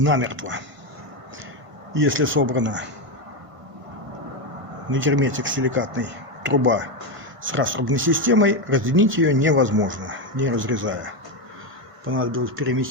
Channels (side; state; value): left; late; 1.5 ms